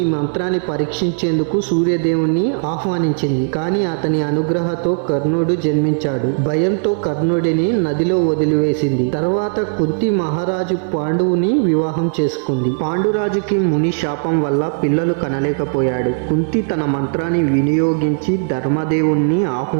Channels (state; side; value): silent; left; digital silence